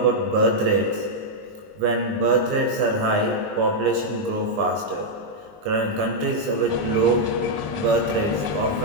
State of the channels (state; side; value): late; left; 19 ms